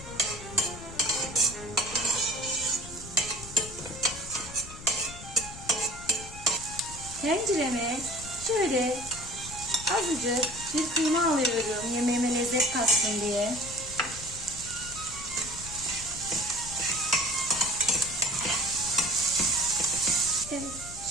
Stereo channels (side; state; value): left; noise; rumble, 14 dB below the sound